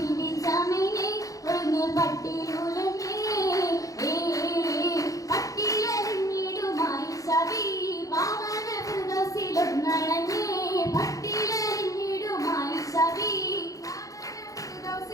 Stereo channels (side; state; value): right; late; 0.17 ms